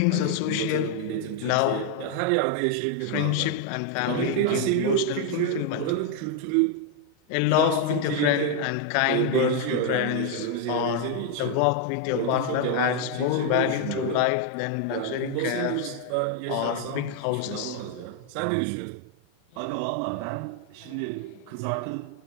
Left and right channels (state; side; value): different; both; correlation 0.00